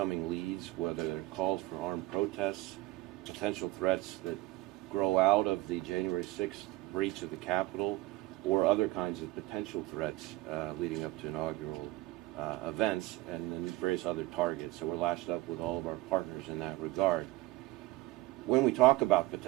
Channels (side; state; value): left; quieter; 18.4 dB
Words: leads, whether they're calls for armed protests, potential threats that grow out of the January 6th breach of the Capitol, or other kinds of potential threats leading up to inaugural events, and then various other targets. So we're lashed up with all of our partners in that regard. When we talk about